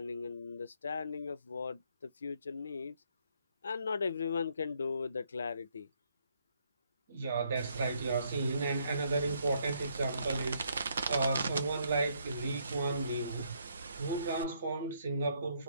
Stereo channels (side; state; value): both; inverted; correlation -0.71